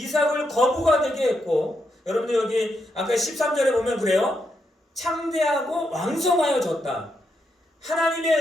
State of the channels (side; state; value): both; normal; correlation 0.81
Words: 거부가 되게 했고, 여러분들 여기 아까 13절에 보면 그래요. 창대하고 왕성하여졌다. 하나님의